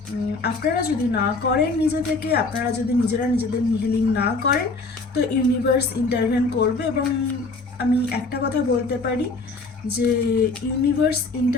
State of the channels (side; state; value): right; quieter; 3.6 dB